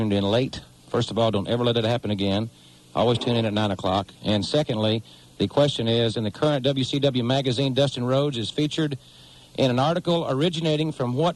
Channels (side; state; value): both; identical; correlation 1.00